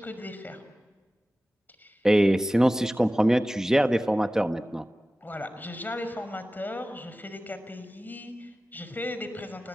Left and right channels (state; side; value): normal; both; correlation 0.96